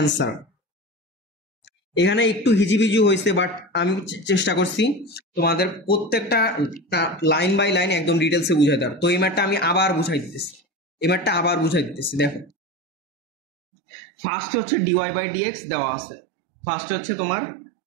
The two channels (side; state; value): left; drops out; at 12.5 s